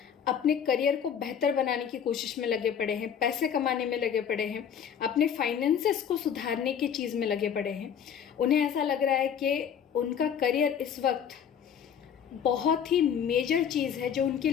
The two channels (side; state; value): right; quieter; 8.2 dB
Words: अपने करियर को बेहतर बनाने की कोशिश में लगे पड़े हैं, पैसे कमाने में लगे पड़े हैं, अपने फाइनेंसेस को सुधारने की चीज़ में लगे पड़े हैं। उन्हें ऐसा लग रहा है कि उनका करियर इस वक्त बहुत ही मेजर चीज़ है जो उनकी